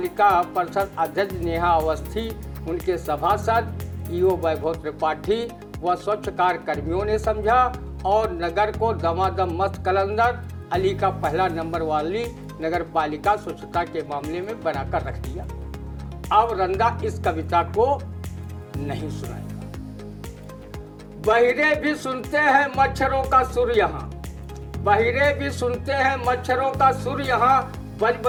परिषद अध्यक्ष नेहा अवस्थी, उनके सभासद ईओ वैभव त्रिपाठी व स्वच्छकार कर्मियों ने समझा और नगर को दमादम मस्त कलंदर अली का पहला नंबर वाली नगर पालिका स्वच्छता के मामले में बनाकर रख दिया। अब रंदा इस कविता को नहीं सुनाएगा। बहिरे भी सुनते हैं मच्छरों का सुर यहाँ, बहिरे भी सुनते हैं मच्छरों का सुर यहाँ, बज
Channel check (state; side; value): identical; both; correlation 1.00